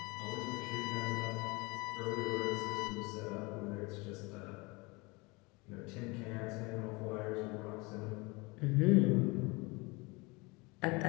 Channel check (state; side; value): quieter; right; 25.9 dB